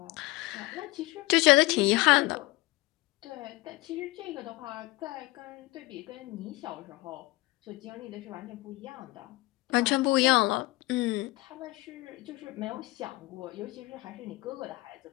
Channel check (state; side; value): quieter; right; 20.9 dB